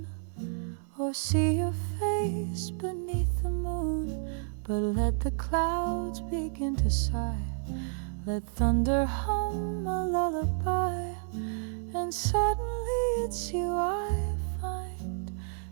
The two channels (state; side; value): silent; left; 57 dB below the other